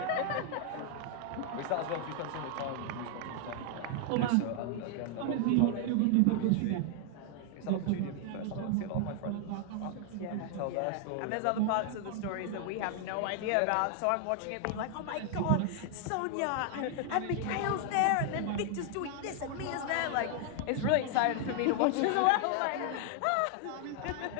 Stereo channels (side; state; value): both; different; correlation 0.00